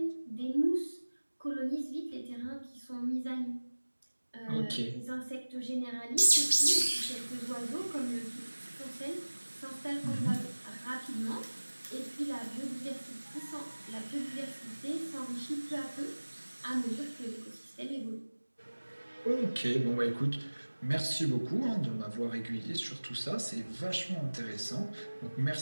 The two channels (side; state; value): both; inverted; correlation -1.00